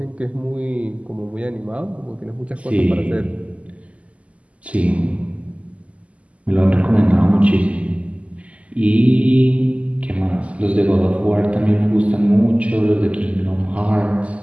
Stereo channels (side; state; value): left; late; 0.066 ms